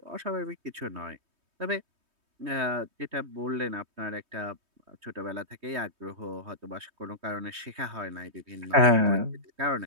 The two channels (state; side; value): late; left; 3.2 ms